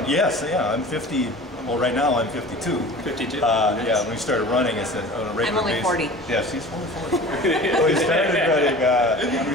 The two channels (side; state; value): both; normal; correlation 0.40